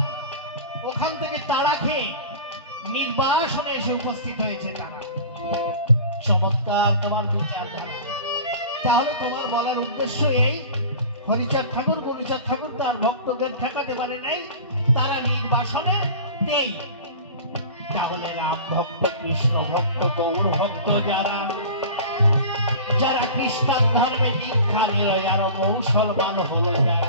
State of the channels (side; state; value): both; inverted; correlation -0.37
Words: ওখান থেকে তাড়া খেয়ে নির্বাসনে এসে উপস্থিত হয়েছে, তারা চমৎকার তোমার বিচারধারা। তাহলে তোমার বলার উদ্দেশ্য এই, হরিচাঁদ ঠাকুর গুরুচাঁদ ঠাকুর তার ভক্তদের ঠেকাতে পারে নাই, তারা নির্বাসনে নেই। তাহলে রাম ভক্ত, কৃষ্ণ ভক্ত, গৌর ভক্ত যারা যারা খ্রিস্টান ধর্মে দীক্ষা নিল, আর মুসলমান হলো